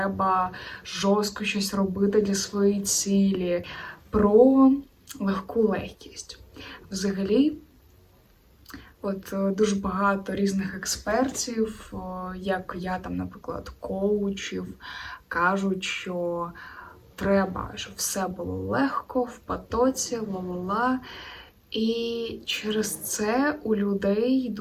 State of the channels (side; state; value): both; identical; correlation 1.00